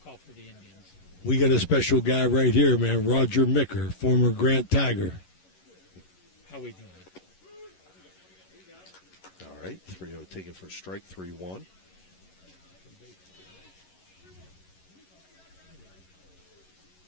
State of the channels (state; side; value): late; right; 11 ms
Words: for the Indians. We got a special guy right here, man. Roger Micker, former Grant Tiger. How we doing? All right, 3-0 taken for a strike, 3-1.